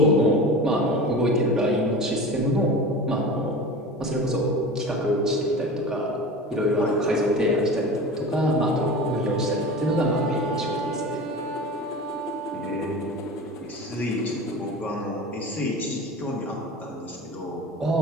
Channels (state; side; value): normal; both; correlation 0.33